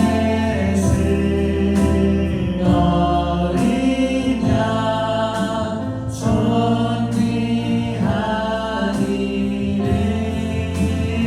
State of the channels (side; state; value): both; identical; correlation 1.00